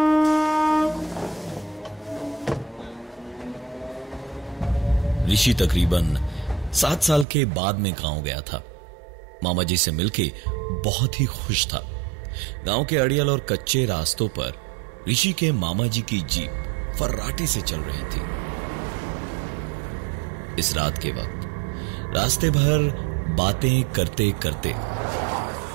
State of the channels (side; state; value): left; drops out; at 7.2 s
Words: ऋषि तकरीबन 7 साल के बाद में गांव गया था। मामा जी से मिलके बहुत ही खुश था। गांव के अड़ियल और कच्चे रास्तों पर ऋषि के मामा जी की जीप फर्राटे से चल रही थी। इस रात के वक्त रास्ते भर बातें करते करते